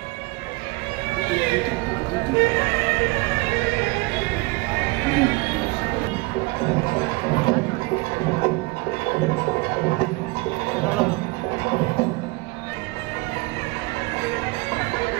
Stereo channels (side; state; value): left; quieter; 24.1 dB